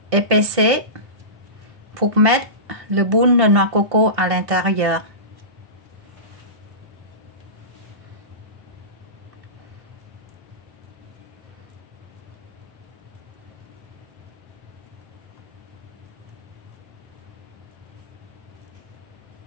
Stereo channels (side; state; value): left; late; 1.6 ms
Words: Épaissez pour mettre le boule de noix de coco à l'intérieur.